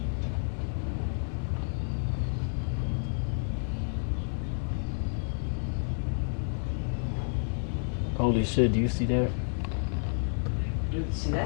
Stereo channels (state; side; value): silent; right; 58 dB below the other